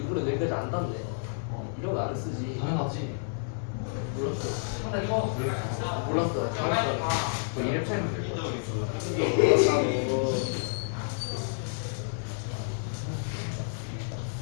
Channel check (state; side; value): silent; right; 58 dB below the other